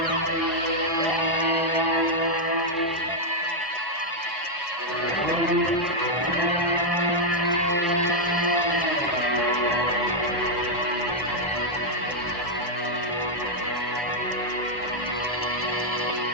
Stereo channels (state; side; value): normal; both; correlation -0.02